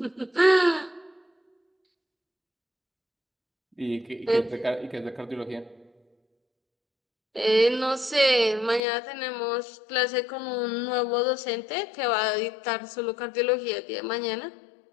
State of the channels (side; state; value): right; drops out; at 8.8 s